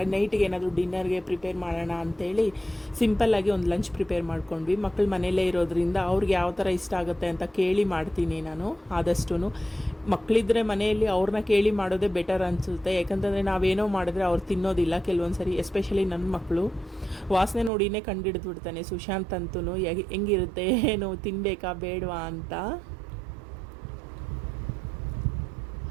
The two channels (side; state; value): left; drops out; at 17.7 s